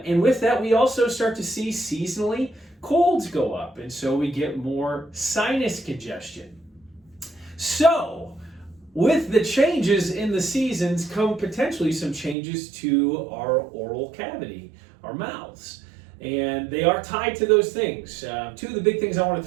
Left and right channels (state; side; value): drops out; left; at 12.4 s